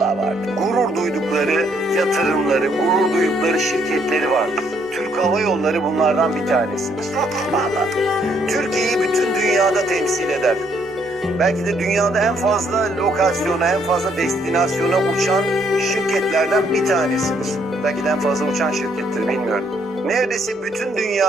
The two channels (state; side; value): normal; both; correlation 0.69